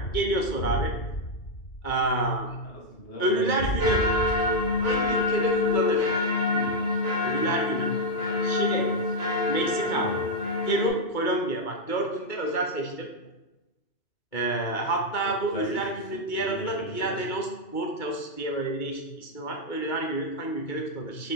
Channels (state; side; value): late; right; 2.2 ms